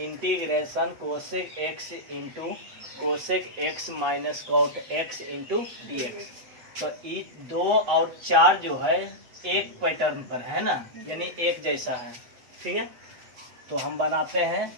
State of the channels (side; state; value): left; late; 8.0 ms